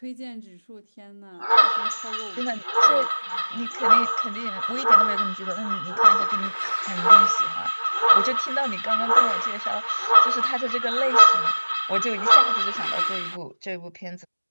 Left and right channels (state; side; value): inverted; both; correlation -1.00